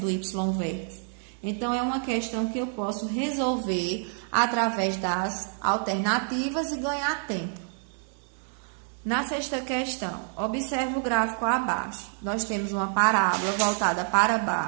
y-vértice. Então, é uma questão que eu posso resolver através das alternativas e ganhar tempo. Na sexta questão, observe o gráfico abaixo. Nós temos uma parábola voltada para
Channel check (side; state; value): left; silent; 60 dB below the other